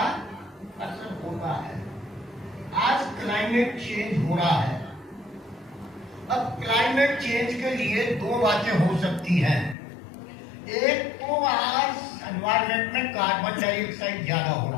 असर होता है। आज क्लाइमेट चेंज हो रहा है। अब क्लाइमेट चेंज के लिए 2 बातें हो सकती हैं। एक तो आज एनवायरमेंट में कार्बन डाइऑक्साइड ज्यादा हो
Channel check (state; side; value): drops out; right; at 9.8 s